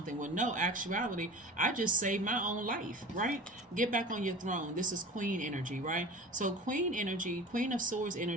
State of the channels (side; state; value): both; normal; correlation 0.37